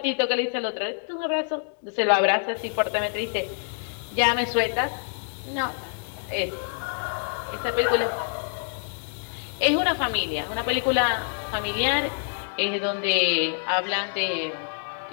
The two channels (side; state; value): right; silent; digital silence